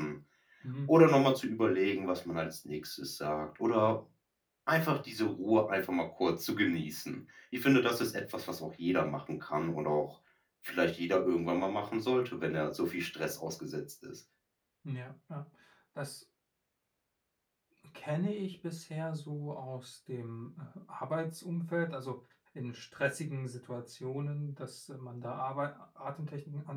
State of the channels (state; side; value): identical; both; correlation 1.00